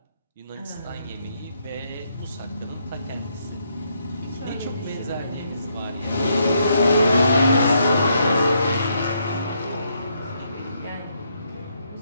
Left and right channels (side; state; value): both; inverted; correlation -0.75